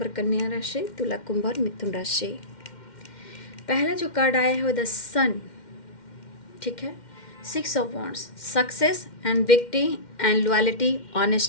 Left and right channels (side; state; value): right; late; 2.1 ms